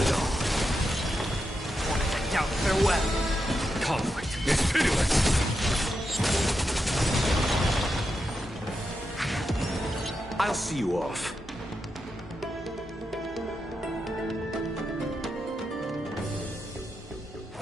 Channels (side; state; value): both; normal; correlation 0.86